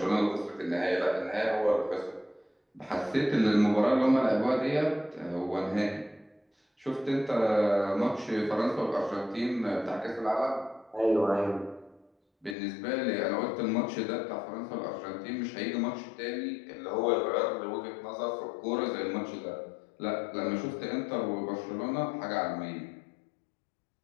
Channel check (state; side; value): drops out; right; at 12.6 s